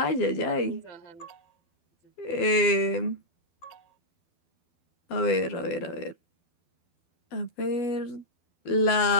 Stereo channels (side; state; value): right; late; 12 ms